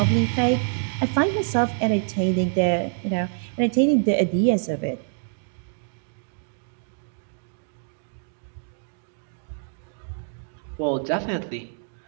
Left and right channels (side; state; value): left; silent; digital silence